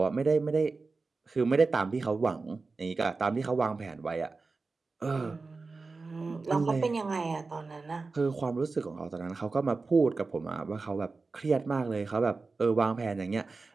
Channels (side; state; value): left; quieter; 4.0 dB